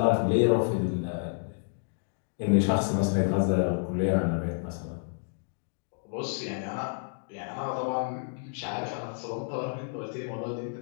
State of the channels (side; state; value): right; silent; digital silence